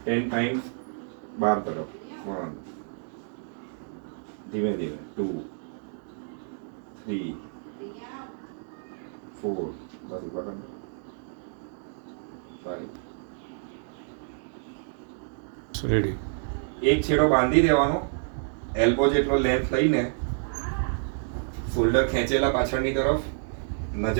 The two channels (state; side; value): silent; left; digital silence